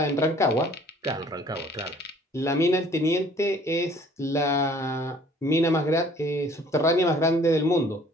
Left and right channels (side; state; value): both; normal; correlation 0.55